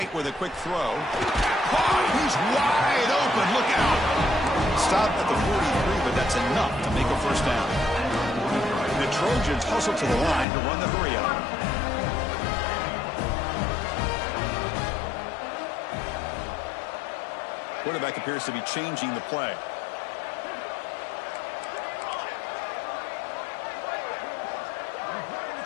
with a quick throw. Oh, he's wide open. Look out. Stopped at the 43, but that's enough to make a first down. The Trojans hustle to the line to run the hurry up. Quarterback appears to be changing the play.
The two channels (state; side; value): drops out; right; at 10.5 s